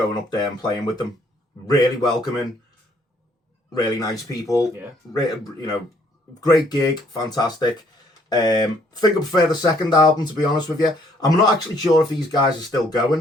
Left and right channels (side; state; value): both; normal; correlation 0.65